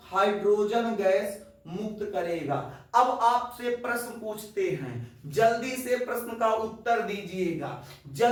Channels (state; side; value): identical; both; correlation 1.00